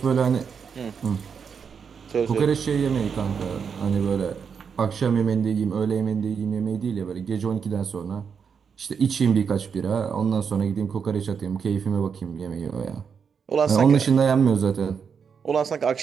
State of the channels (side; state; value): left; quieter; 6.5 dB